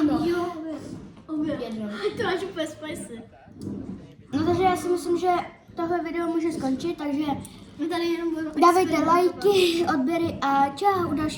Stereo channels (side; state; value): both; identical; correlation 1.00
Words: jedno. jo, obě. Jedno. To máš úplně spicy. No takže já si myslím, že tohle video může skončit, takže My tady jenom budeme dávejte experimentovat. lajky, odběry a čau u